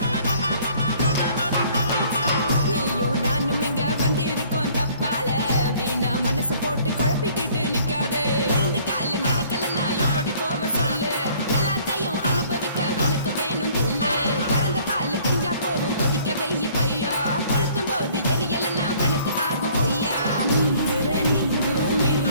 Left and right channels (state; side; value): inverted; both; correlation -0.57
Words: நீயும் நானும் இங்க வந்திருக்கோம் தப்பால வீணா மனச போட்டு குழப்பிக்கிட்டு நிக்காதே எழுந்து கால நடக்கலன்னா எப்படி போவ சொல்லு எல்லாத்தையும் அனுபவிக்க உனக்கு வேணும் தில்லு கறந்த பால் தெரிஞ்சா போகும் கொதிக்க வெய்ய பையா கொளுத்தும் போது எரியலன்னா வனக்கு ஆகும் பொய்யா நீந்துற நீந்தும்